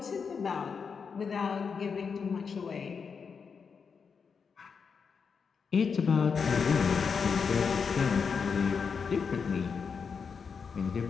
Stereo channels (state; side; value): quieter; right; 5.9 dB